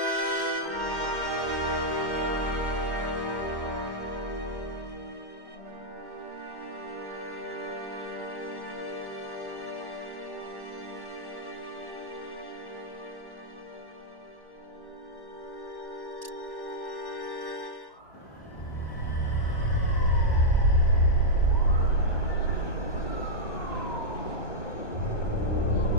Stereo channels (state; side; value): late; right; 1.0 ms